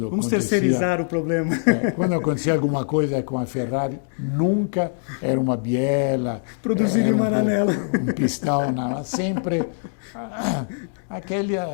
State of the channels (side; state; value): right; silent; digital silence